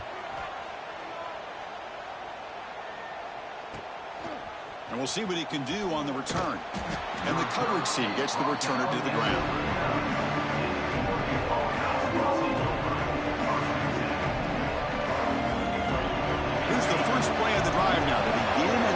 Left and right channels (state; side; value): identical; both; correlation 1.00